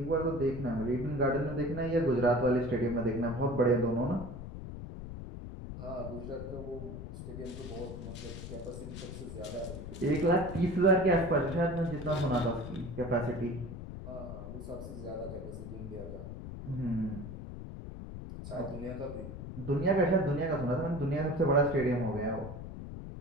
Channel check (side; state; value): left; noise; rumble, 9 dB below the sound